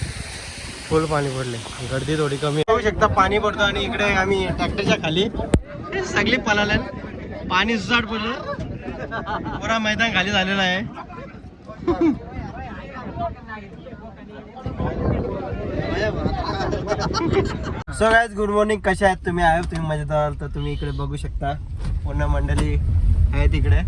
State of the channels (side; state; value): both; identical; correlation 1.00